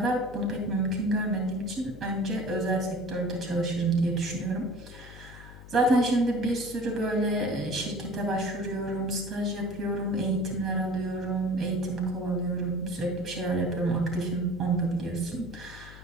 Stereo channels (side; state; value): left; noise; hum, 16 dB below the sound